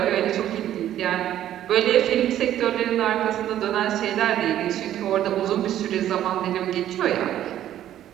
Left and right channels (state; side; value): quieter; left; 11.9 dB